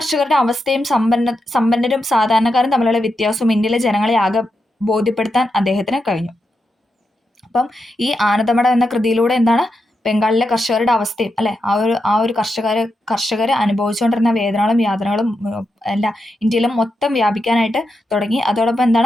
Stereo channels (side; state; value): both; normal; correlation 0.86